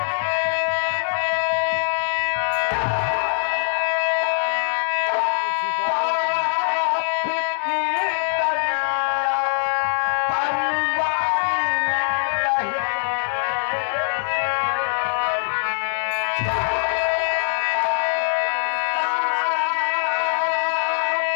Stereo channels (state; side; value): silent; right; digital silence